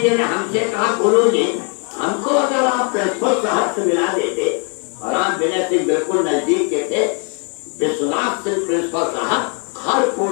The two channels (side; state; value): right; quieter; 37.6 dB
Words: जी ने हमसे कहा, गुरु जी हमको अगर आप प्रिंसिपल साहब से मिला देते। और रामविनर सिंह बिल्कुल नजदीक के थे। विश्वनाथ सिंह प्रिंसिपल साहब हर